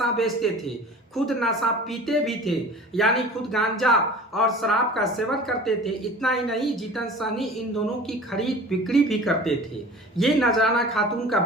बेचते थे, खुद नशा पीते भी थे, यानी खुद गांजा और शराब का सेवन करते थे। इतना ही नहीं, जीतन सहनी इन दोनों की खरीद बिक्री भी करते थे। ये नजराना खातून का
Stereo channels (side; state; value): both; normal; correlation 0.41